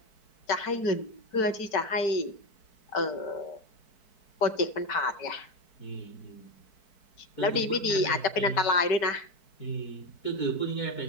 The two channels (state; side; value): late; right; 4.6 ms